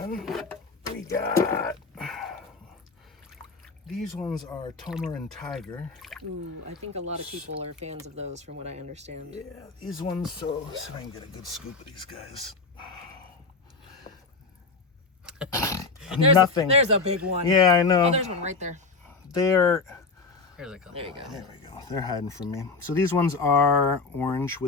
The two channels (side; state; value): right; quieter; 4.1 dB